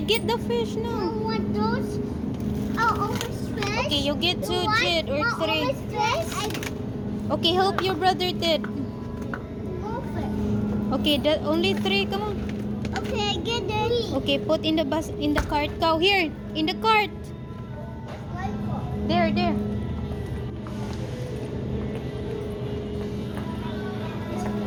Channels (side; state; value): both; identical; correlation 1.00